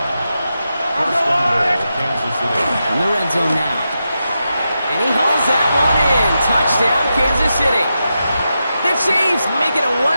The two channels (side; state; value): both; inverted; correlation -0.88